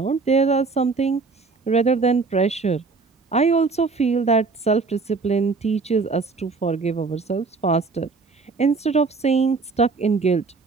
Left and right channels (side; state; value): left; quieter; 4.3 dB